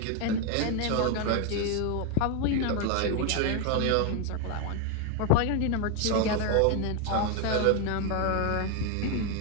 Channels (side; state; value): both; different; correlation 0.01